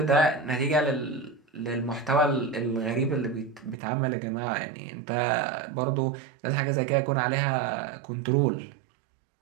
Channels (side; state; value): left; drops out; at 3.8 s